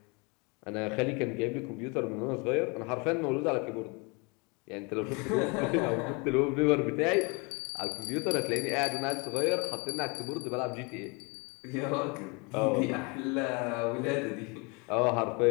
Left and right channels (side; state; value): right; quieter; 30.5 dB